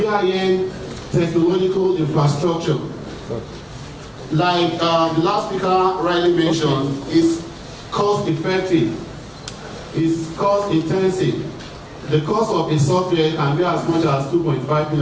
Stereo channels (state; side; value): identical; both; correlation 1.00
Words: technological infrastructure. Like the last speaker rightly mentioned, it's cost effective, it's cost intensive. The cost of a software can be as much as 2.5